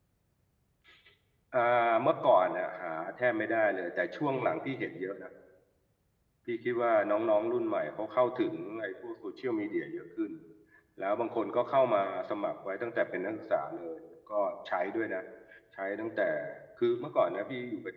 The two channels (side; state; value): both; identical; correlation 1.00